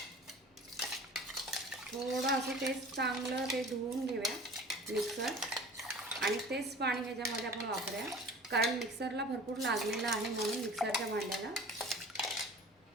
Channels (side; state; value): both; normal; correlation 0.42